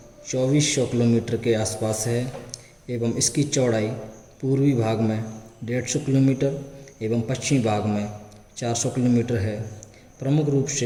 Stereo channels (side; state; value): both; identical; correlation 1.00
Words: 2400 किलोमीटर के आसपास है एवं इसकी चौड़ाई पूर्वी भाग में 150 किलोमीटर एवं पश्चिमी भाग में 400 किलोमीटर है। प्रमुख रूप